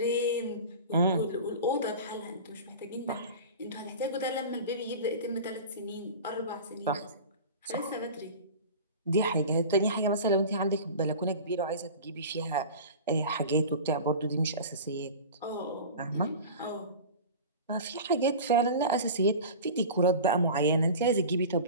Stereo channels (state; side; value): inverted; both; correlation -0.34